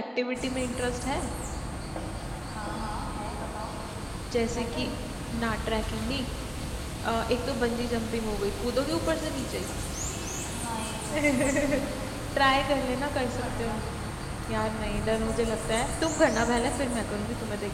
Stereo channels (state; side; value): identical; both; correlation 1.00